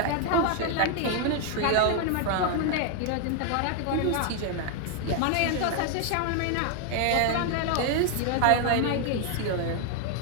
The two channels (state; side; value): different; both; correlation 0.00